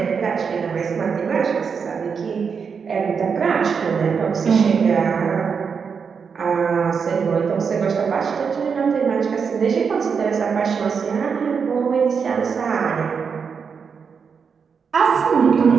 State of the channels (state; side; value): quieter; left; 6.1 dB